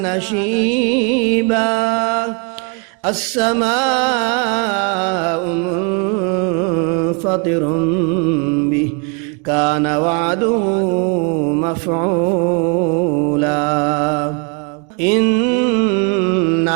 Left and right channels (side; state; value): left; quieter; 34.9 dB